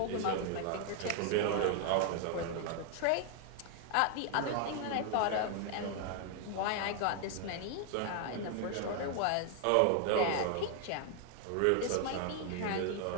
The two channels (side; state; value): both; different; correlation 0.00